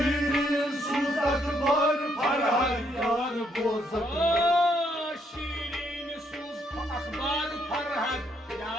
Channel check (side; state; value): both; normal; correlation 0.72